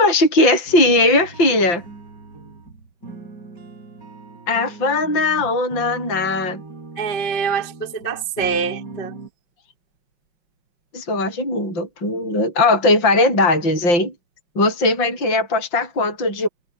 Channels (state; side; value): late; right; 5.8 ms